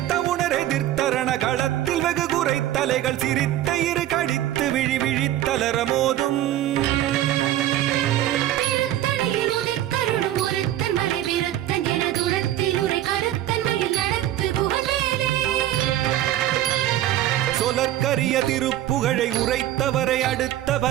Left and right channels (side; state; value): left; quieter; 13.3 dB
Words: உணர் எதிர்த்தரண களத்தில் வெகு குறை தலைகள் சிரித்த இரு கடித்து விழி விழித்தலர மோதும் சொலற்கரிய திருப்புகழை உரைத்தவரை அடுத்த